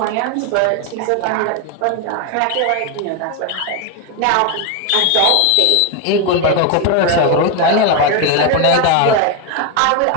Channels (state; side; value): different; both; correlation 0.02